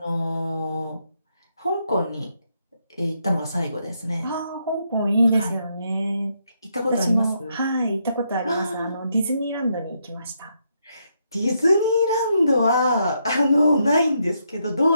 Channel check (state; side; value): inverted; both; correlation -0.78